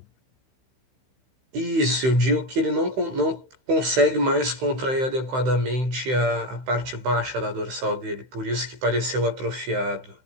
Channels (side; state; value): left; late; 15 ms